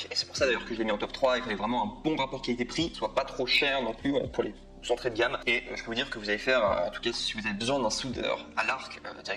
Et c'est pour ça d'ailleurs que je l'ai mis en top 3, il fallait vraiment un bon rapport qualité-prix, soit pas trop cher non plus pour les entrée de gamme. Et je peux vous dire que vous allez faire, en tout cas si vous avez besoin d'un soudeur à l'arc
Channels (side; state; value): both; identical; correlation 1.00